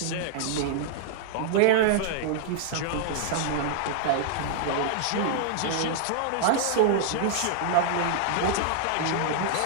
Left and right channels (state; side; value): different; both; correlation -0.01